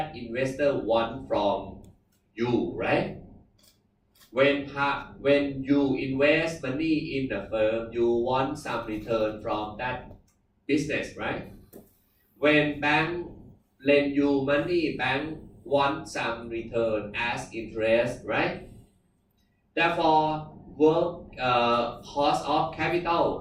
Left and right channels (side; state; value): both; identical; correlation 1.00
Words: investor want from you, right? When you invest money in the firm, you want some return from that business, right? When bank lend you money, bank want some return as interest, right? Therefore, cost of